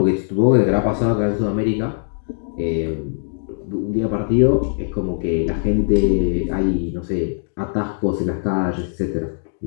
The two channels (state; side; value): silent; right; digital silence